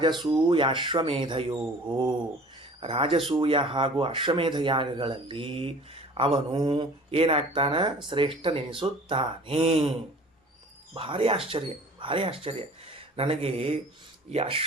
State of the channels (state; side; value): normal; both; correlation 0.46